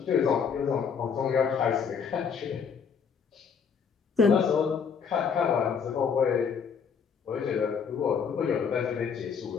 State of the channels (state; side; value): quieter; right; 6.5 dB